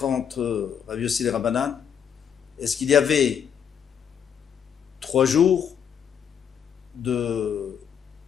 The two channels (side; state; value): right; quieter; 8.1 dB